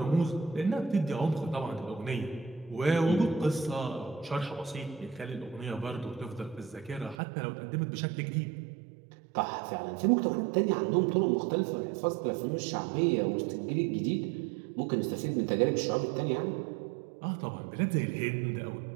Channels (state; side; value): drops out; left; at 7.2 s